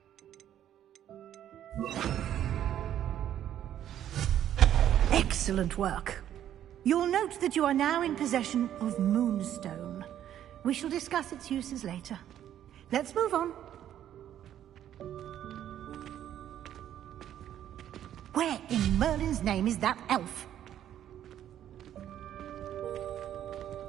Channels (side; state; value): left; quieter; 10.9 dB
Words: Excellent work. You'll note that you are now in possession of Moonstone. We shall discuss its uses later. Let's move on. Where in Merlin's name is that elf?